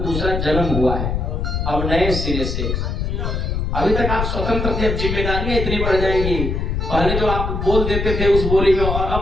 दूसरा जन्म हुआ है, अब नए सिरे से। अभी तक आप स्वतंत्र थे, अब जिम्मेदारियां इतनी बढ़ जाएंगी। पहले जो आप बोल देते थे उस बोली में और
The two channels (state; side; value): noise; left; rumble, 1 dB below the sound